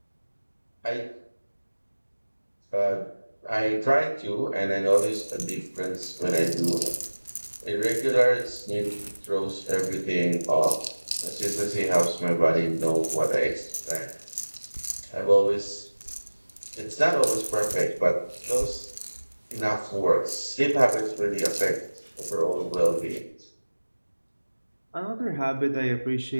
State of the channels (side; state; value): both; inverted; correlation -1.00